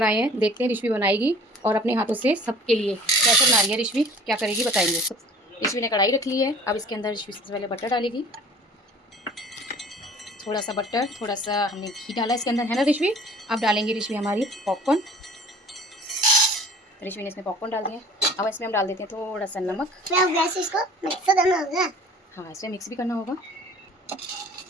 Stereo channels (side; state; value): both; normal; correlation 0.46